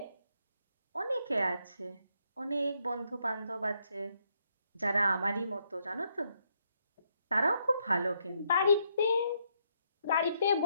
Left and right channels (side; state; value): both; inverted; correlation -0.76